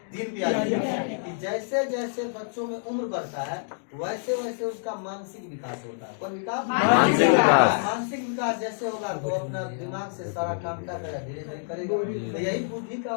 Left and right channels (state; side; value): silent; right; digital silence